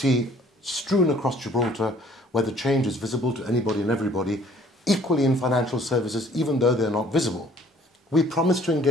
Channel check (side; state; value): both; normal; correlation 0.56